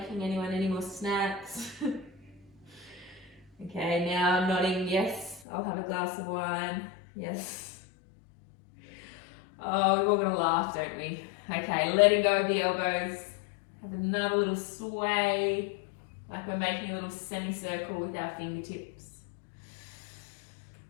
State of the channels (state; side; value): drops out; right; at 5.4 s